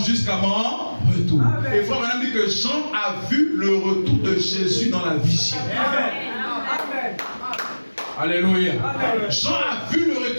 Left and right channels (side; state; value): both; inverted; correlation -1.00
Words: mon retour. Amen. Et frère Madame dit que Jean a vu le retour de Jésus dans la vision. Amen. Amen. Alléluia. Amen. Jean a vu le